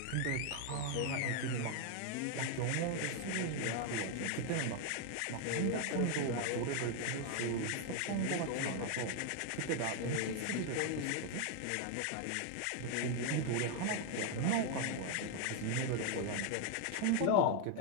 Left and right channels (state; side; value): different; both; correlation 0.01